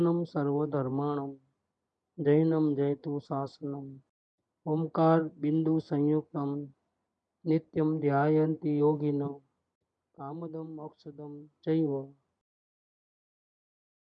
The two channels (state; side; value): identical; both; correlation 1.00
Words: सर्वधर्माणम जैनम जयतु शासनम ओंकार बिंदु संयुक्तम नित्यम ध्यायन्ति योगिनो कामदम मोक्षदम चैव।